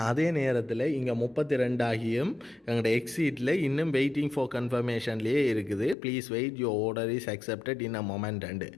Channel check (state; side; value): drops out; right; at 6.0 s